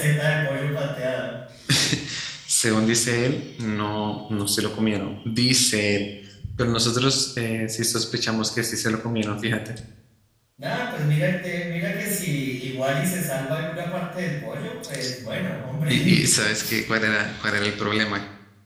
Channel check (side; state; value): both; identical; correlation 1.00